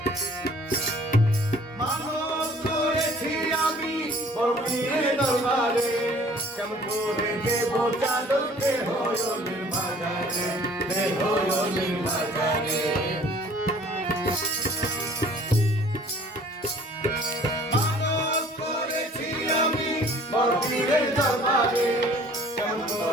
দরবারে কেমন করে দেব চাদর বেহয়লের বাজারে, বেহয়লের বাজারে। মানত করেছি আমি বড়পীরের দরবারে, কেমন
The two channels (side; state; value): both; normal; correlation 0.53